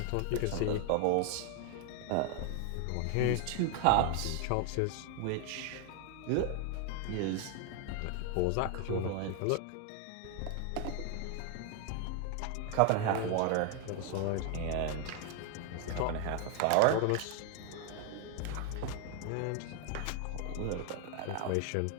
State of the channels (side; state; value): both; different; correlation 0.00